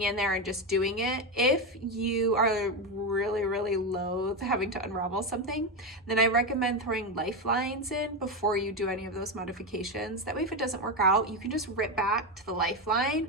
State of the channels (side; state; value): both; normal; correlation 0.12